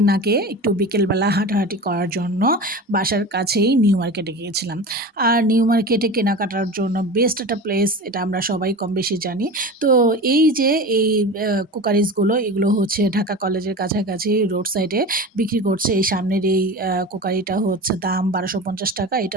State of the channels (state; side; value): normal; both; correlation 0.31